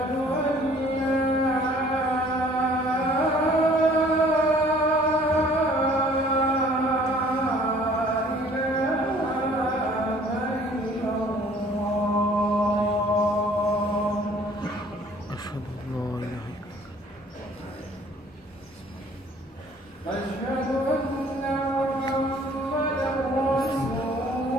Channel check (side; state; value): both; normal; correlation 0.55